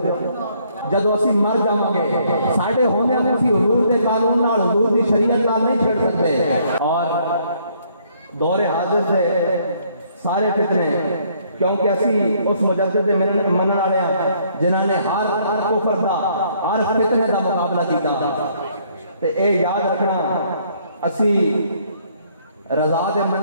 جدو اسی مر جاؤں گے ساڑھے ہونے ہمیں اسی حضور دے قانون نال حضور دی شریعت نال نہیں چھڑ سکتے۔ اور دور حاضر سے سارے فتنے، کیونکہ اسی اس مجدد دے منن والے جنہاں نے ہر کفر دا ہر فتنے دا مقابلہ کیتا، تے اے یاد رکھنا اسی رضا دے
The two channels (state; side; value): inverted; both; correlation -0.66